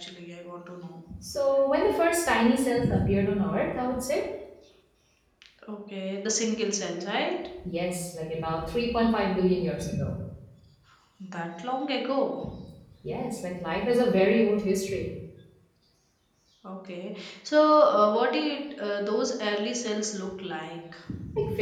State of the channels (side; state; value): both; identical; correlation 1.00